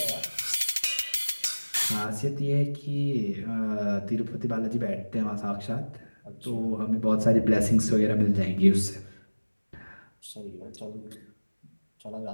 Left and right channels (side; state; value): both; inverted; correlation -1.00